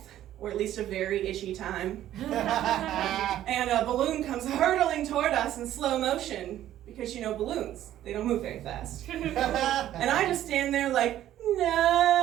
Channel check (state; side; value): quieter; left; 12.5 dB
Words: or at least a very itchy time. And a balloon comes hurtling toward us in slow motion, because you know balloons, they don't move very fast. And I just stand there like, no!